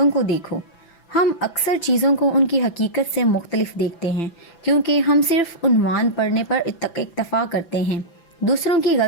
کو دیکھو۔ ہم اکثر چیزوں کو ان کی حقیقت سے مختلف دیکھتے ہیں کیونکہ ہم صرف عنوان پڑھنے پر اکتفا کرتے ہیں۔ دوسروں کی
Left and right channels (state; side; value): late; right; 5.9 ms